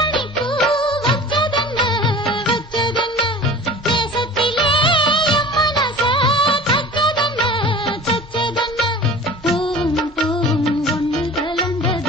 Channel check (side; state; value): both; normal; correlation 0.40